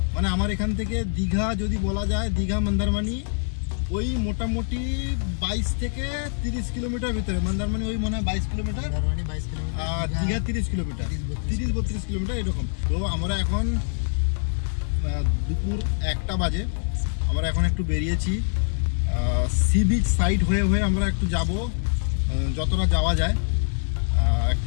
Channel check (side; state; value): right; silent; digital silence